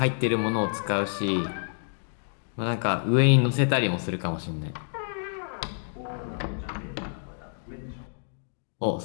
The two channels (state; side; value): silent; right; digital silence